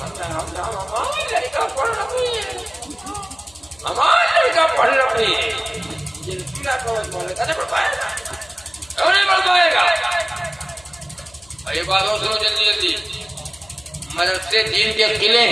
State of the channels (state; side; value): noise; left; hum, 29 dB below the sound